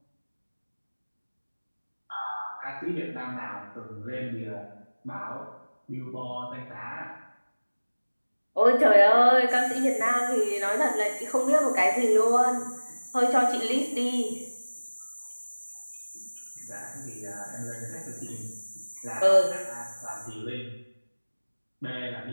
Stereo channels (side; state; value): both; inverted; correlation -1.00